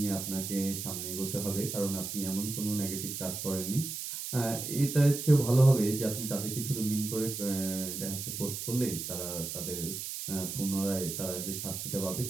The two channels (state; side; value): noise; right; hiss, 5 dB below the sound